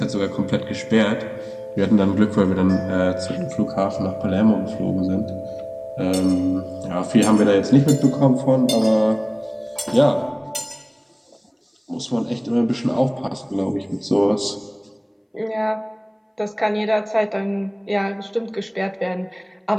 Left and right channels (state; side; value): identical; both; correlation 1.00